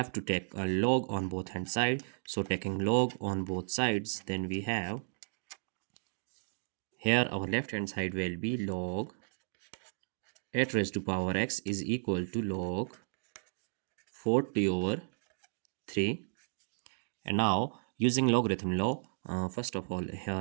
to take a log on both hand side, so taking log on both sides, then we have here our left hand side will be log 8 raised to power x is equal to log 40 over 3. And now using logarithm law, first of all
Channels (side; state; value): left; silent; digital silence